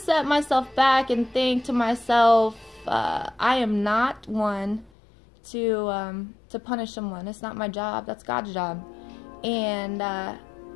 myself back and think to myself, I am not one to punish someone. It's not my job. That's God's job. And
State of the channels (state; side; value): drops out; right; at 4.9 s